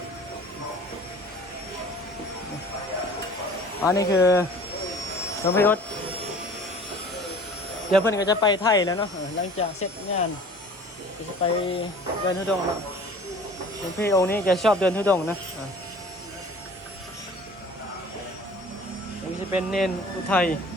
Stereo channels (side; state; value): both; normal; correlation 0.46